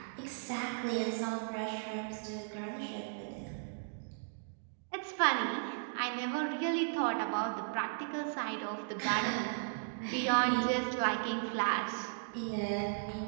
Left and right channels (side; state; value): left; silent; digital silence